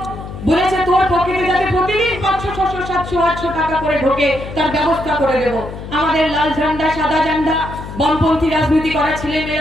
বলেছে তোর পকেটে যাতে প্রতিদিন 500, 600, 700, 800 টাকা করে ঢোকে তার ব্যবস্থা করে দেব। আমাদের লাল ঝান্ডা, সাদা ঝান্ডা, বামপন্থী রাজনীতি করা ছেলে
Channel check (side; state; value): left; noise; hum, 10 dB below the sound